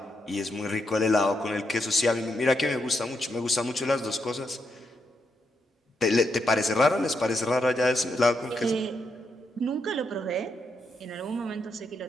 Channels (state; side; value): normal; both; correlation 0.81